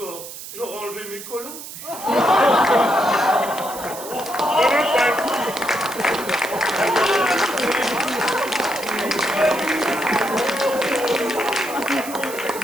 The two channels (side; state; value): right; noise; hiss, 12 dB below the sound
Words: j'aurais enlevé mes collants.